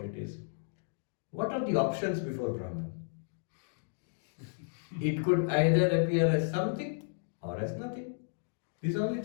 it is, what are the options before Brahman? It could either appear as something or as nothing. This is the only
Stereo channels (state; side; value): silent; right; digital silence